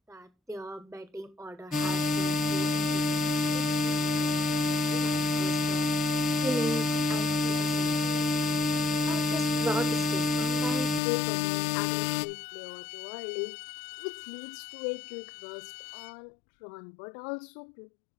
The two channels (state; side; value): drops out; right; at 11.0 s